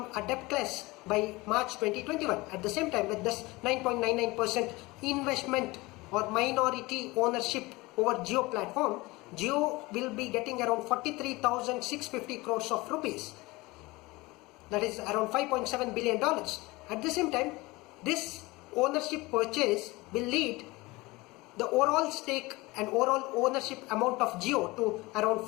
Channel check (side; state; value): right; quieter; 22.1 dB